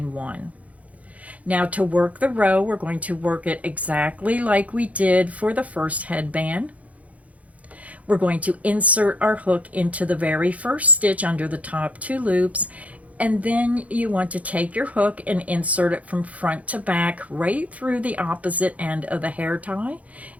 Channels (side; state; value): left; late; 0.069 ms